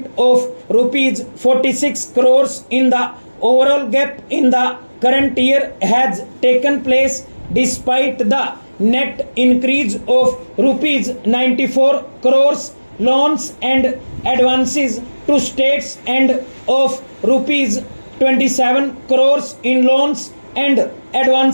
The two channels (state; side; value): inverted; both; correlation -1.00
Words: of rupees 46 crores in the overall gap in the current year has taken place despite the net increase of rupees 94 crores loans and advances to states and of rupees 27 crores in loans and